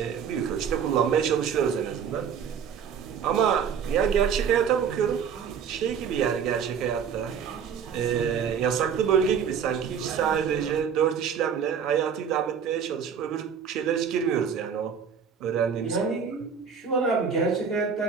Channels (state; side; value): quieter; left; 7.2 dB